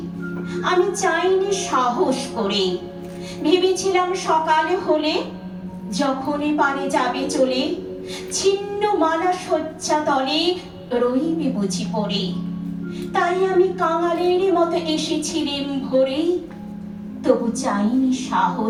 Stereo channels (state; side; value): identical; both; correlation 1.00